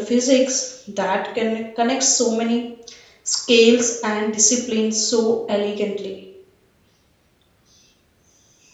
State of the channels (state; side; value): identical; both; correlation 1.00